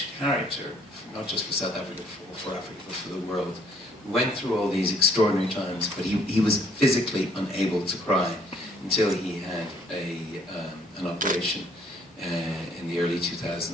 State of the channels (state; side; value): normal; both; correlation 0.63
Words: character, not just for South Africa, for Africa, but for the world, who went through all these extraordinary times, but he was physically unable to cry until he had an operation in the early